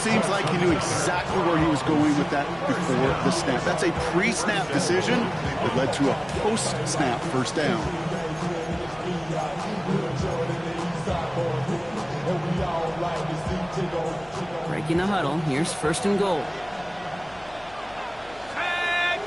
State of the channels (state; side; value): noise; left; hum, 24 dB below the sound